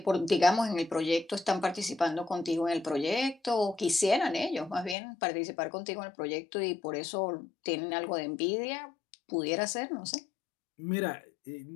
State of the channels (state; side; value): drops out; right; at 5.0 s